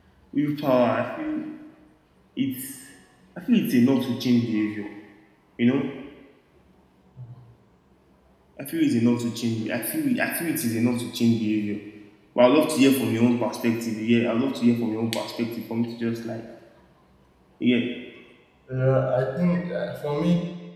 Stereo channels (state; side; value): identical; both; correlation 1.00